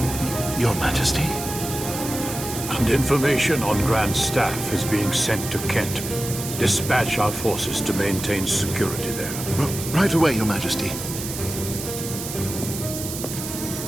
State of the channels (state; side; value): noise; right; hiss, 7 dB below the sound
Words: Your Majesty? And information on Grand Staff is being sent to Kent. Dispatch our forces to maintain security there. Right away, Your Majesty.